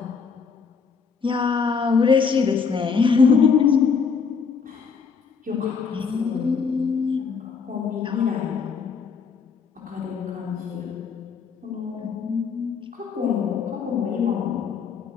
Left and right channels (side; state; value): right; quieter; 5.7 dB